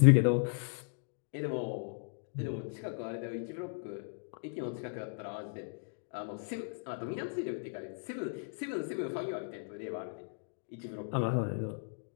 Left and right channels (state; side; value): silent; right; digital silence